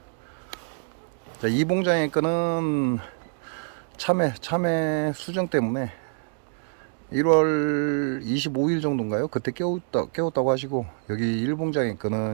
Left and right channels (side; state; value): left; silent; digital silence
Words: 자, 이 봉장의 끈은 참외 수정 때문에 1월 25일 정도인가요? 그때 깨웠다고 하시고, 여기 1봉장의